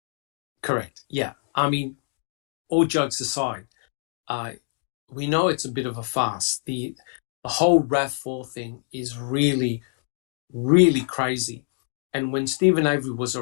Yeah. I mean, all jokes aside, we know it's a bit of a farce. The whole RAV4 thing is really, really crazy. And when Stephen Avery was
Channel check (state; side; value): silent; right; digital silence